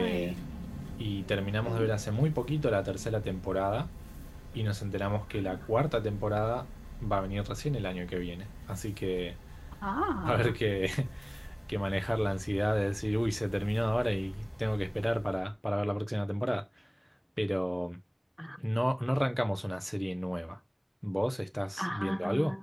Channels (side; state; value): both; identical; correlation 1.00